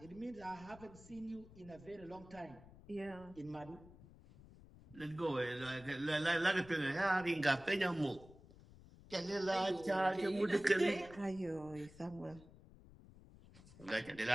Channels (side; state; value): left; noise; rumble, 20 dB below the sound